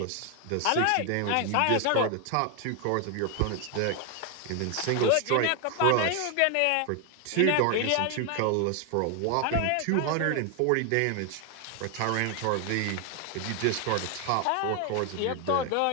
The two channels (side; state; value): both; different; correlation 0.00